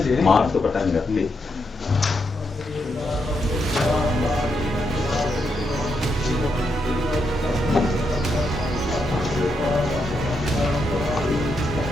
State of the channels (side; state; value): both; normal; correlation 0.82